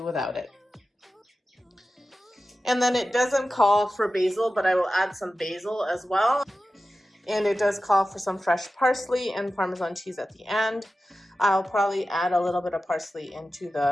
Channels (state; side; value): normal; both; correlation 0.94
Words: without it. And then it doesn't call for basil, but I will add some basil as well. And it does call for some fresh parsley and Parmesan cheese at the end. I'll probably add a little bit of parsley into